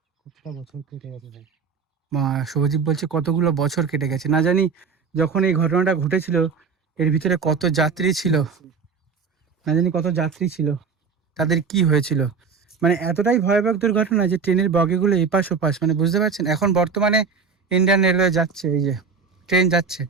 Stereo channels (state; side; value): quieter; left; 5.4 dB